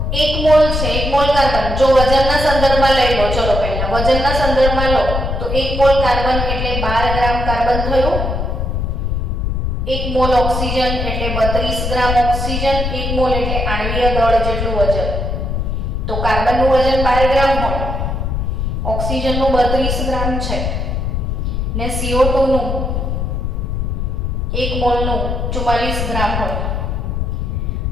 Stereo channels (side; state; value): left; noise; rumble, 1 dB below the sound